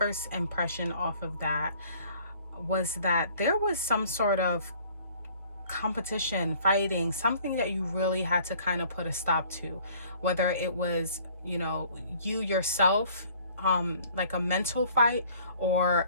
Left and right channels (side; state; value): both; inverted; correlation -0.55